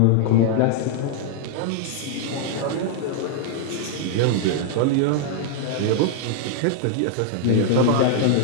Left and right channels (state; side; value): different; both; correlation 0.00